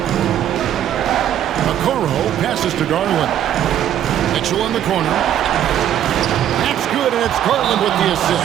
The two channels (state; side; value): quieter; left; 10.7 dB